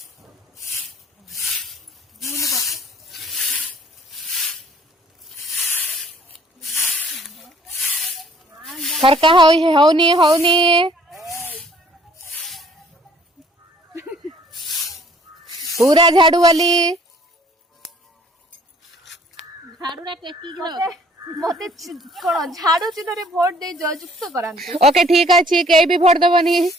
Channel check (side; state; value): both; normal; correlation 0.57